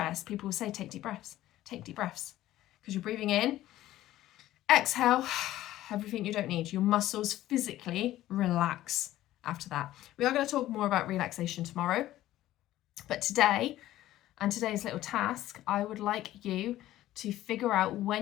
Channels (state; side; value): quieter; right; 14.5 dB